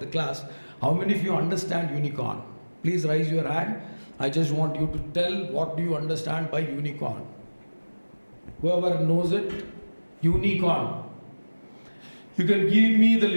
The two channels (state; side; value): inverted; both; correlation -1.00